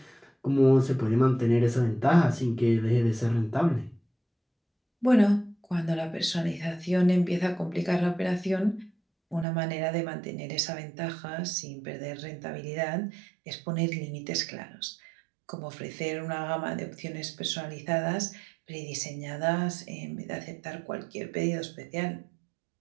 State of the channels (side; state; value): left; drops out; at 9.5 s